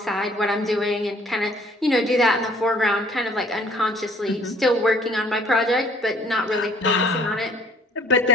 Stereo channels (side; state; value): both; normal; correlation 0.58